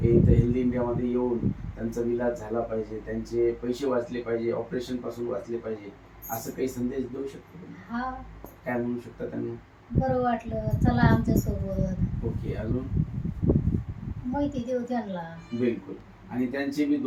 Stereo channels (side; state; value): both; identical; correlation 1.00